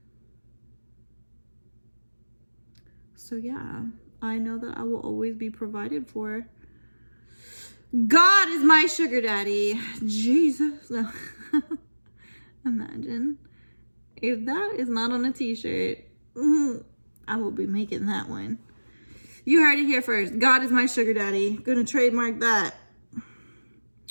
So yeah, I know that I will always be provided for. God is my sugar daddy. Jesus. No. Imagine if that is not on a t-shirt. I will be making that one. You heard it here first. God is my sugar daddy. Gonna trademark that.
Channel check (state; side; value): inverted; both; correlation -1.00